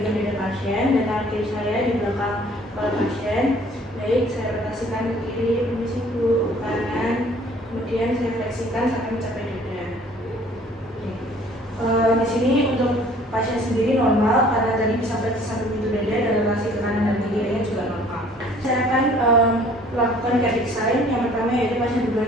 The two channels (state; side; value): normal; both; correlation 0.55